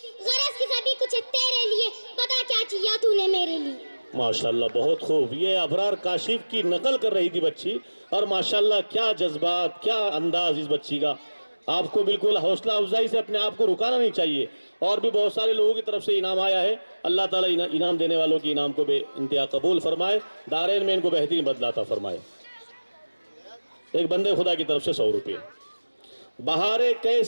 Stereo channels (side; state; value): both; inverted; correlation -1.00